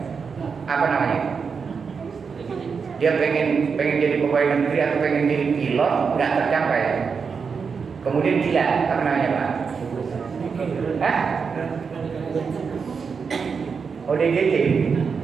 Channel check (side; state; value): left; quieter; 5.7 dB